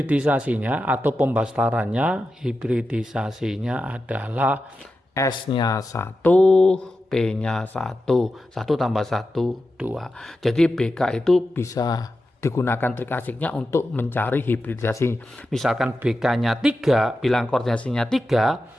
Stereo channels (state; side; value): normal; both; correlation 0.91